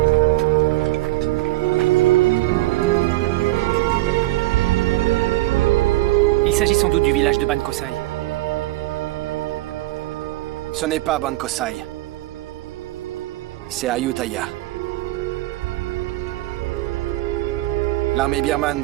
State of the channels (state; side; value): quieter; left; 18.2 dB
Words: Il s'agit sans doute du village de Ban Kosai. Ce n'est pas Ban Kosai. C'est Ayutthaya. L'armée birmane